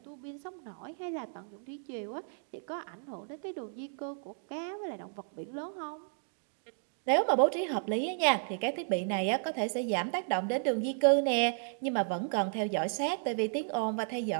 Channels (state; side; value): silent; left; digital silence